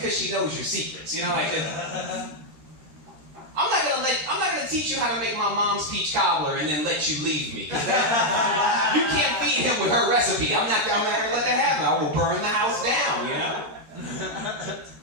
she knows your secrets. You know, like I'm not gonna teach you how to make my mom's peach cobbler and then let you leave me. You can't feed him with her recipe. I'm not gonna let that happen. I will burn the house down. You know.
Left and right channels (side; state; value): left; late; 13 ms